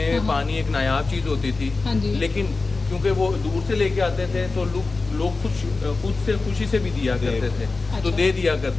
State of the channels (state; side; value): quieter; right; 3.8 dB